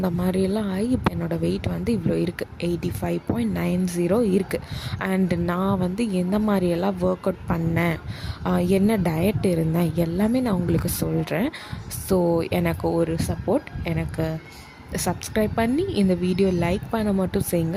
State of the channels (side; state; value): both; identical; correlation 1.00